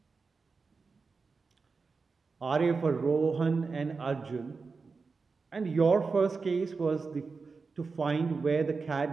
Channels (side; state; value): left; quieter; 4.6 dB